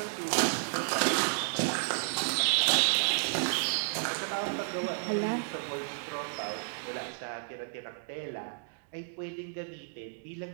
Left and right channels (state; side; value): silent; left; digital silence